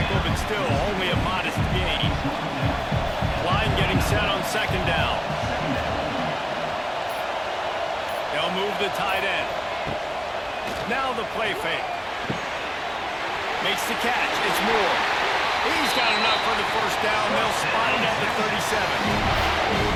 but still only a modest gain. Line getting set on second down. They'll move the tight end. Now the play fake. Makes the catch. It's Moore. He's got enough for the first down. They'll spot it at the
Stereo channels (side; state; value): both; identical; correlation 1.00